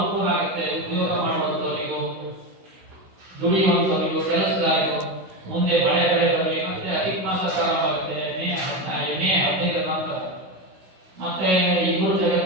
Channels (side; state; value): left; late; 16 ms